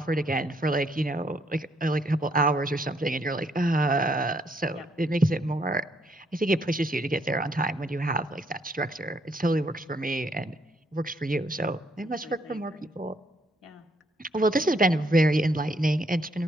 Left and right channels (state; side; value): normal; both; correlation 0.71